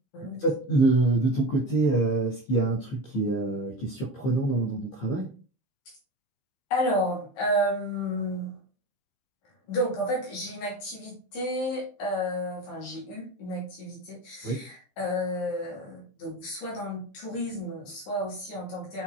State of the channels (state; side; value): late; right; 15 ms